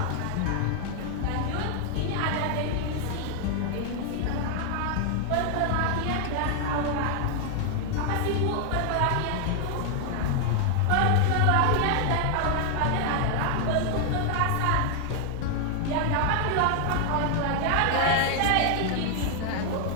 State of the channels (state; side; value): different; both; correlation 0.00